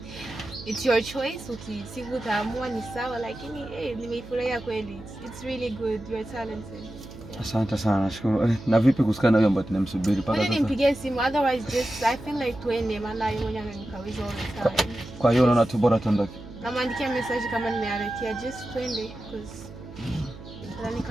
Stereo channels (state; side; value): noise; right; hum, 15 dB below the sound